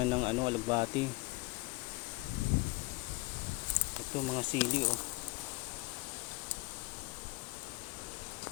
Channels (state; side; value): quieter; right; 24.1 dB